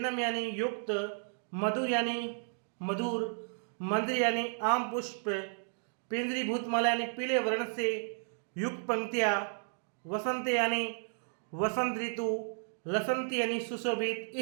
यानी युक्त, मधुर यानी मधुर, मंजरी यानी आम पुष्प, पिंजरी भूतमाला यानी पीले वर्ण से युक्त पंक्तियां, वसंत यानी वसंत ऋतु, लसंती यानी सुशोभित,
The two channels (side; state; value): left; silent; 56 dB below the other